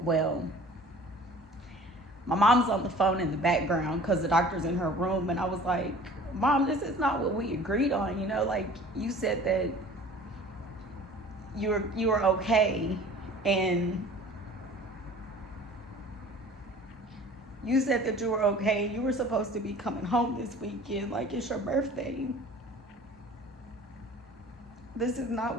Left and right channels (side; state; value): both; normal; correlation 0.46